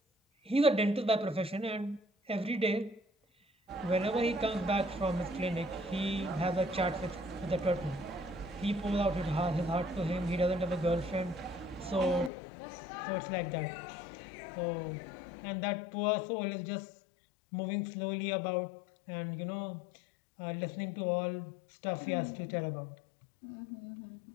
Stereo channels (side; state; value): right; drops out; at 12.3 s